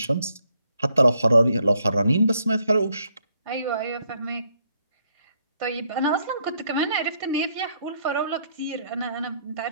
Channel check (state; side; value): inverted; both; correlation -0.72